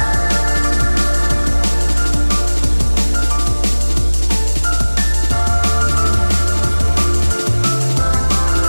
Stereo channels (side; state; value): both; inverted; correlation -1.00